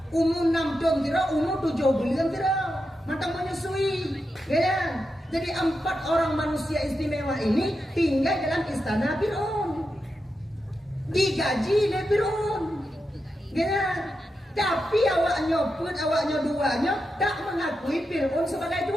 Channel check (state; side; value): normal; both; correlation 0.88